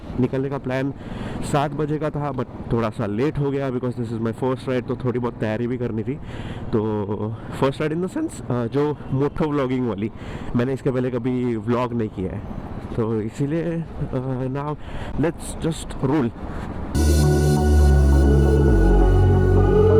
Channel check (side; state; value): both; identical; correlation 1.00